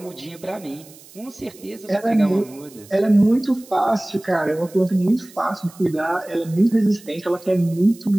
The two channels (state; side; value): noise; right; hiss, 22 dB below the sound